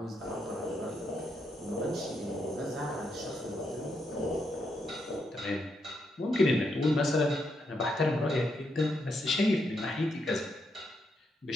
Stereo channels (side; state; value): both; normal; correlation 0.80